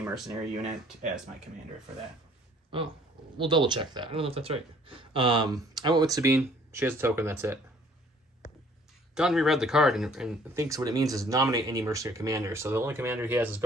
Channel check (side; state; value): both; normal; correlation 0.57